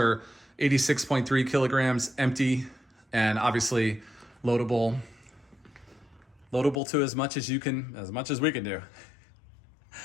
86.3 kilograms empty, and obviously loadable to as much as we can do.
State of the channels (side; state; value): right; drops out; at 6.8 s